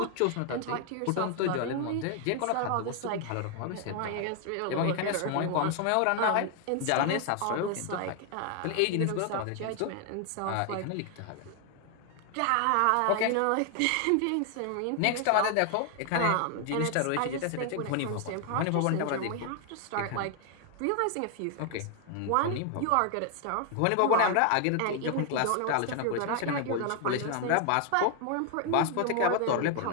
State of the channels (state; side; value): different; both; correlation 0.00